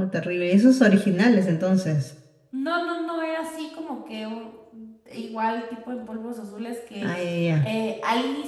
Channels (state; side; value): identical; both; correlation 1.00